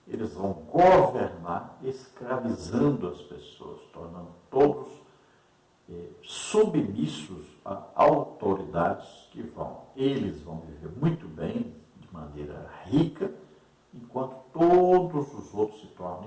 Eles vão governar escravizando as pessoas, tornando todos submissos a autoridades que eles vão viver muito bem, de maneira rica, enquanto todos os outros se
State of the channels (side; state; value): both; identical; correlation 1.00